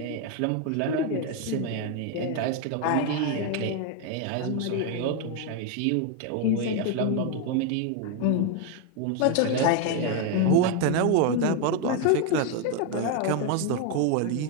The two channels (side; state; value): both; different; correlation 0.01